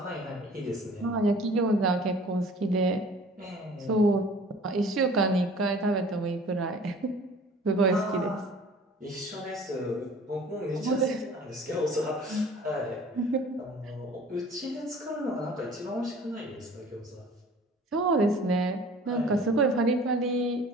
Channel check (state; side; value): normal; both; correlation 0.47